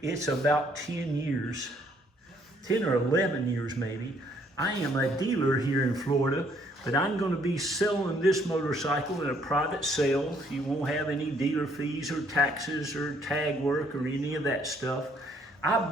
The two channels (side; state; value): both; normal; correlation 0.66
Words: it's about 10 years, 10 or 11 years maybe. I am a dealer here in Florida, but I'm going to be selling this motorcycle in a private sale. You won't have any dealer fees or taxes or tag work or any of that stuff. I